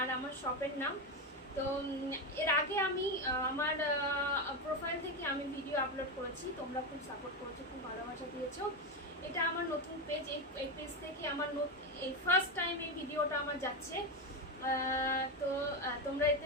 আমার শপের নাম। তো এর আগে আমি আমার প্রোফাইল থেকে আমি ভিডিও আপলোড করেছি, তোমরা খুব সাপোর্ট করেছো, খুব ভালোবাসা দিয়েছো। এটা আমার নতুন পেজ, এই পেজ থেকে আমার এই ফার্স্ট টাইম এই ভিডিওটা আমার যাচ্ছে। তো তোমরা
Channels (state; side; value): normal; both; correlation 0.12